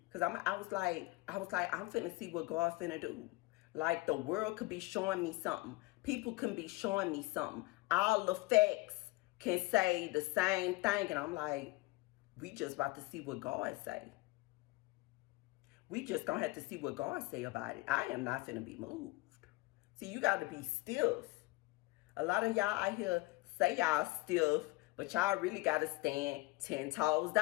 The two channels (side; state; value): right; quieter; 21.6 dB